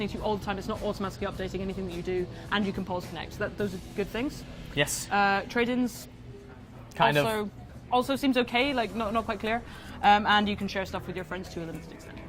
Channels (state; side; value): identical; both; correlation 1.00